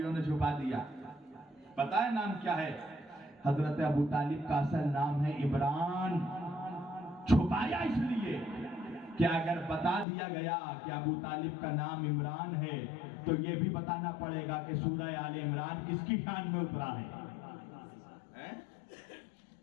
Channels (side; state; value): right; drops out; at 10.1 s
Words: نے چھپا دیا۔ پتہ ہے نام کیا ہے؟ حضرت ابو طالب کا اصل نام ہے عمران۔ چھپایا اس لیے کہ اگر بتا دیا گیا کہ ابو طالب کا نام عمران ہے تو یہ بھی بتانا پڑے گا کہ سورہ آل عمران کس کی شان میں اترا ہے۔